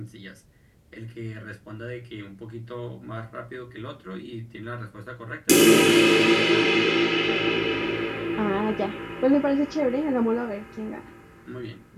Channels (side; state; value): both; identical; correlation 1.00